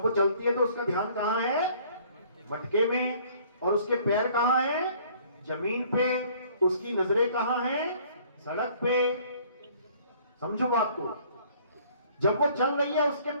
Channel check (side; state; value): both; inverted; correlation -0.56